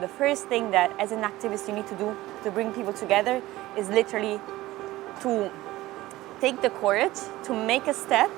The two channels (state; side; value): quieter; left; 17.5 dB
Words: the first thing that as an activist you need to do to bring people together is literally to take the courage to make a step